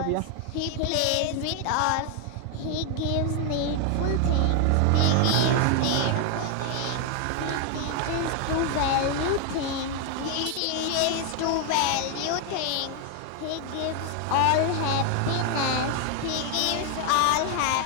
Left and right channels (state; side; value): different; both; correlation 0.00